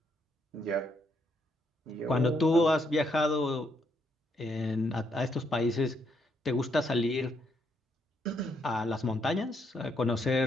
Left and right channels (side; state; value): both; normal; correlation 0.75